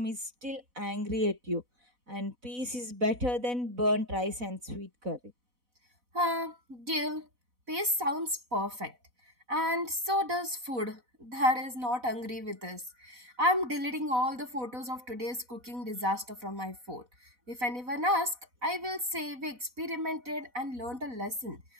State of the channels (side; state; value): left; late; 4.0 ms